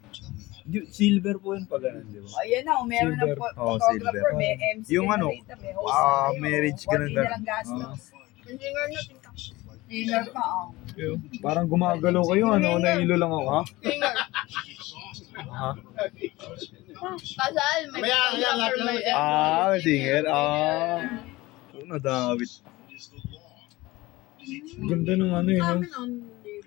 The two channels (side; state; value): right; quieter; 19.9 dB